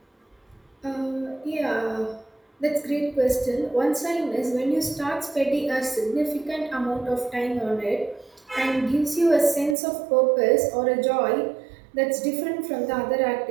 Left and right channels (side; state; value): left; drops out; at 9.8 s